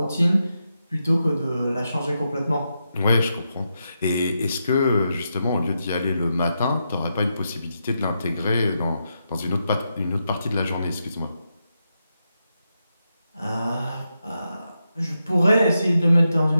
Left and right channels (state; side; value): inverted; both; correlation -0.85